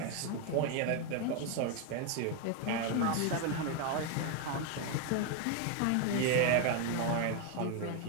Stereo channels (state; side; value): different; both; correlation 0.01